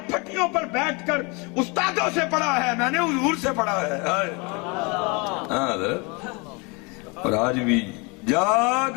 फटियों पर बैठकर उस्तादों से पढ़ा है, मैंने हुजूर से पढ़ा है। और आज भी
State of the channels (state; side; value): quieter; right; 29.4 dB